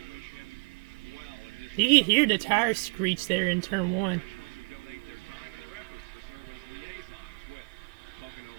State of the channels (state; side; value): quieter; left; 34.6 dB